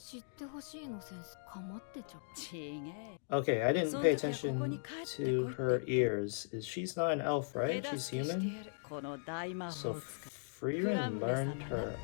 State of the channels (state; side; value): silent; right; digital silence